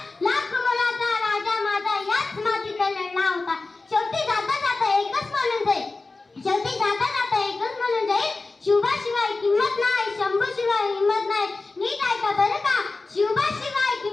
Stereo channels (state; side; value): quieter; right; 3.6 dB